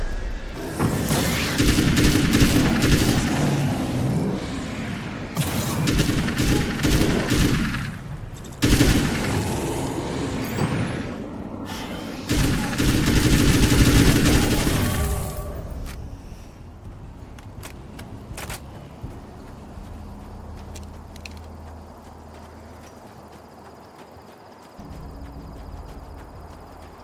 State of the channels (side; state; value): both; identical; correlation 1.00